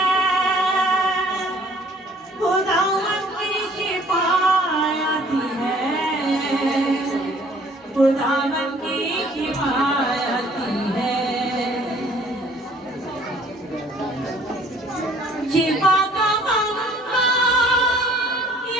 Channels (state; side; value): normal; both; correlation 0.57